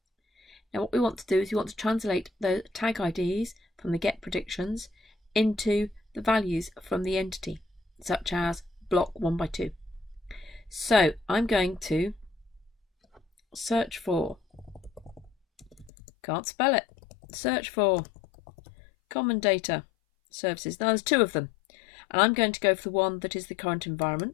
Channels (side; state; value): right; drops out; at 15.9 s